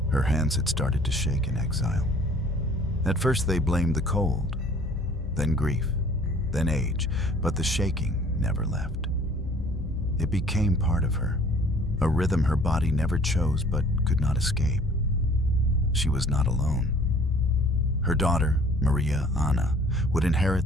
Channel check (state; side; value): normal; both; correlation 0.53